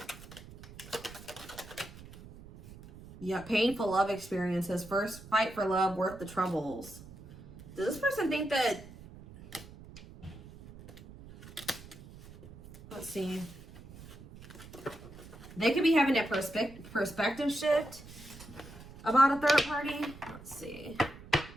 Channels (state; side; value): noise; right; rumble, 17 dB below the sound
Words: Yeah, painful love experiences. First fight for love, worth the troubles. Does this person think that... Let's see. They could be having a perspective shift about a third party. Let's see.